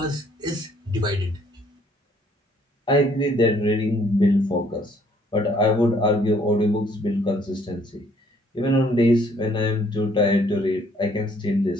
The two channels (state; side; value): normal; both; correlation 0.63